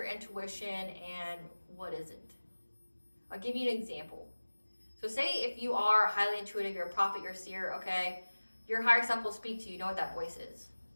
intuition and what isn't. I'll give you an example. So say if you are highly intuitive, you're a prophet, you're a seer, okay? Your higher self will speak to you, know what that voice is.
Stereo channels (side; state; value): both; inverted; correlation -1.00